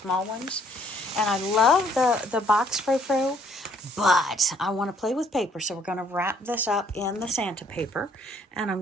ones. And I love the box frou-frou, but I want to play with paper. So we're going to wrap this up in the Santa paper. And I'm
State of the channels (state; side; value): normal; both; correlation 0.64